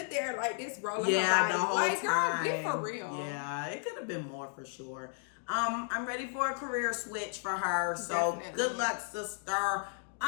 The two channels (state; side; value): silent; right; 55 dB below the other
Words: there like this, rolling her body. The whole like, time. Girl, get for real. Yeah, it could have been more for sure. I'm ready for a career switch for her. So Definitely. Good luck, sister.